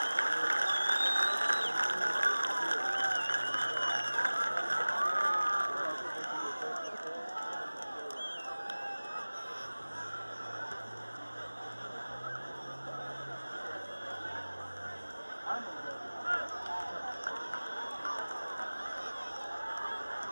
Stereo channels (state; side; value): inverted; both; correlation -1.00